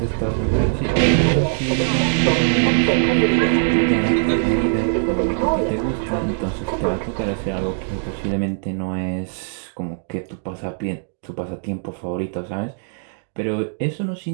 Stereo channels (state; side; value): silent; left; digital silence